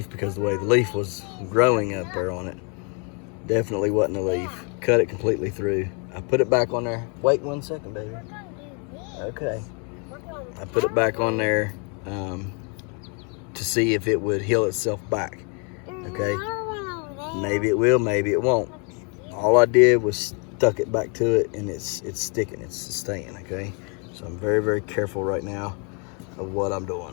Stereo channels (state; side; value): quieter; right; 36.4 dB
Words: because the way the leaf was growing up there on it. Definitely wasn't the leaf. Cut it completely through. I put it back on there. Wait 1 second, baby. Okay. I put it back on there to see if it would heal itself back. Okay. Maybe it will, maybe it won't. All I did was stuck it back to it, and it's sticking, it's staying. Okay. So I'm very, very careful right now of what I'm